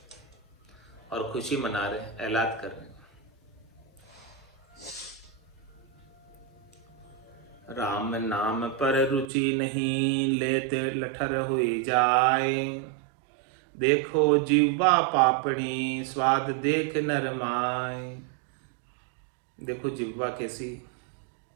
और खुशी मना रहे, ऐलान कर रहे। राम नाम पर रुचि नहीं, लेते लठर हुई जाए। देखो जीवा पापणी स्वाद देख नरमाय। देखो जिह्वा कैसी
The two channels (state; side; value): drops out; left; at 9.3 s